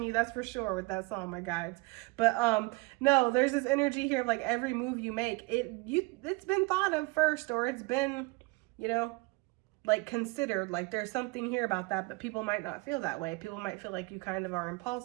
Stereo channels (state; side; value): quieter; left; 26.1 dB